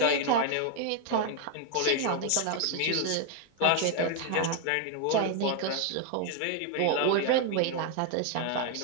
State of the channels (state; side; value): different; both; correlation 0.01